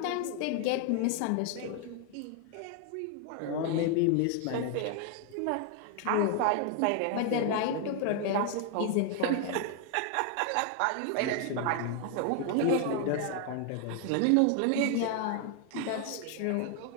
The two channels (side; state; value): both; different; correlation 0.00